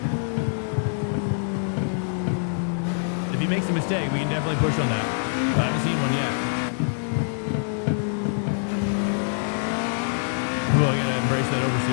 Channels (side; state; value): right; silent; digital silence